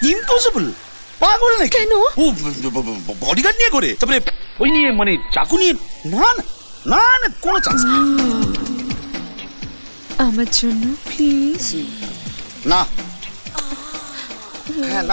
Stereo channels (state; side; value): inverted; both; correlation -1.00